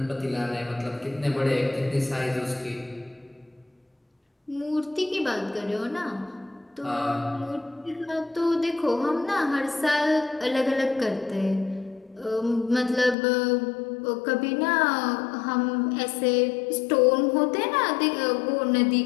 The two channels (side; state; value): right; drops out; at 13.2 s